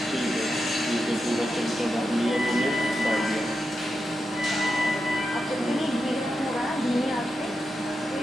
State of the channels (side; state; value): both; normal; correlation 0.88